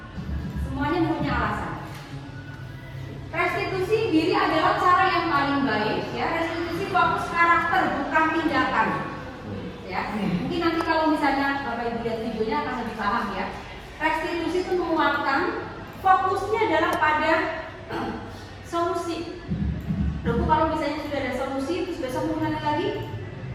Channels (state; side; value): identical; both; correlation 1.00